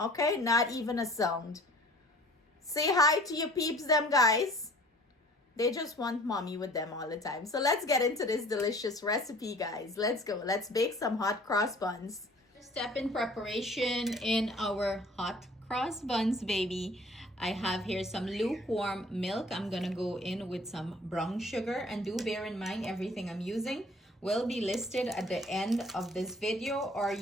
Not even a sound. Say hi to your peeps, them guys. They just want mommy with them all the time. So let's get into this delicious recipe, guys. Let's go. Let's bake some hot cross buns. First step in preparation in our hot cross buns, baby. I have here some lukewarm milk. I'm going to go in with some brown sugar. And do bear in mind, everything I'm using will be listed at the end of this video, or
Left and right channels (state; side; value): normal; both; correlation 0.51